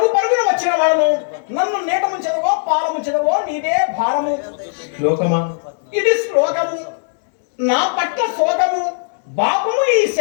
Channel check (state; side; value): silent; right; digital silence